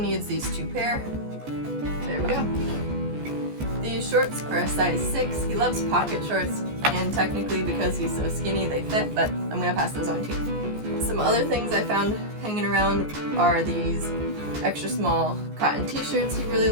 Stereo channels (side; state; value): left; late; 14 ms